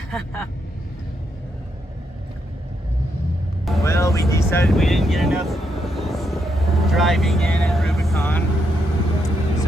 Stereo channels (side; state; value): both; normal; correlation 0.79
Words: Well, we decided we didn't get enough driving in at Rubicon,